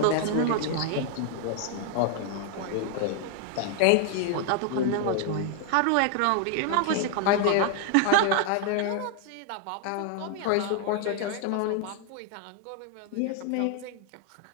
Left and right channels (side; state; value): both; different; correlation 0.00